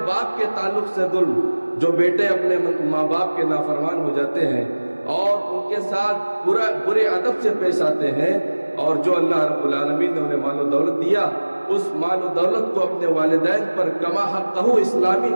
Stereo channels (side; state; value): both; inverted; correlation -1.00